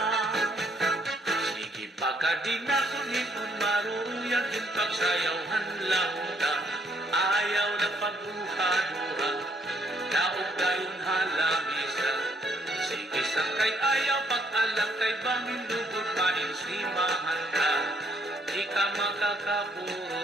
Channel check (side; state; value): both; normal; correlation 0.69